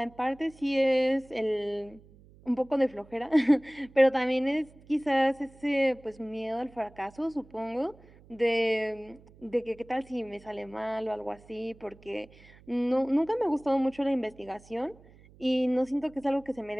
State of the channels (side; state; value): right; noise; hum, 25 dB below the sound